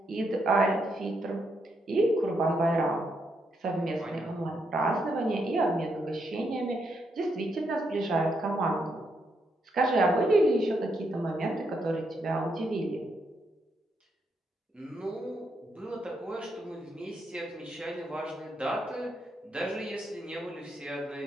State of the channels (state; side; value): normal; both; correlation 0.79